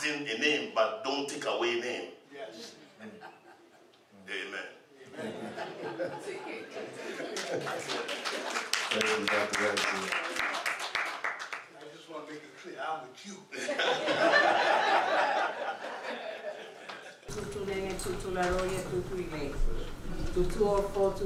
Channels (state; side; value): identical; both; correlation 1.00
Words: a name, but don't take away a name. Yes. Amen. I just want to make it clear, I'm with you. Tutu nene, tutu la roye, tutu ile. Tutu ofo,